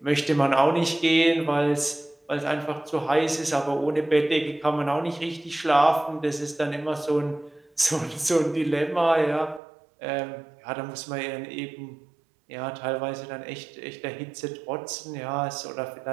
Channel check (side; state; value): left; drops out; at 9.6 s